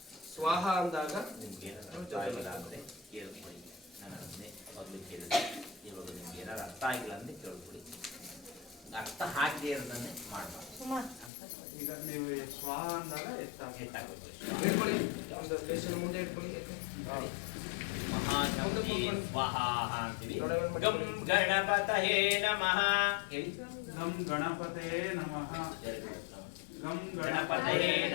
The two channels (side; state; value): right; drops out; at 11.3 s